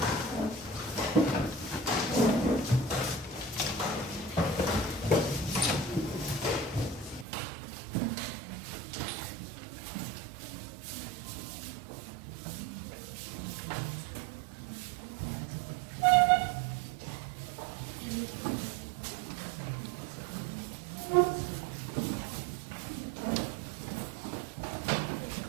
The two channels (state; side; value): drops out; left; at 7.2 s